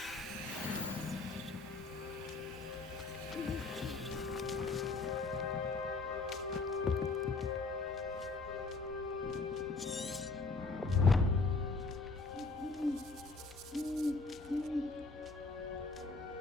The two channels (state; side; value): quieter; right; 3.9 dB